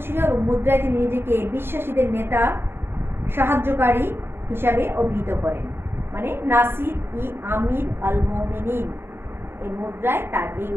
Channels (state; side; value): late; left; 0.11 ms